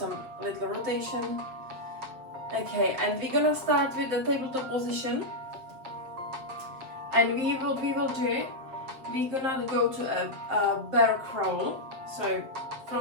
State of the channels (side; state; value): left; late; 7.8 ms